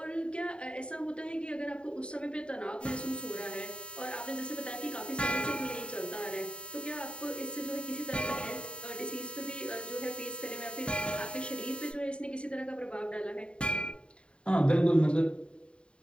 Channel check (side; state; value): right; late; 0.055 ms